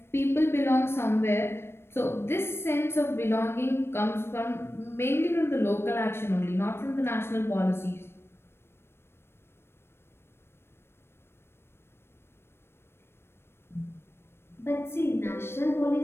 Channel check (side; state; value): right; late; 0.12 ms